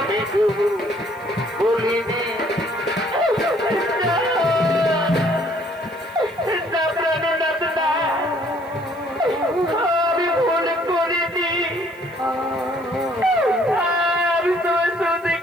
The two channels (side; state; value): right; noise; hiss, 28 dB below the sound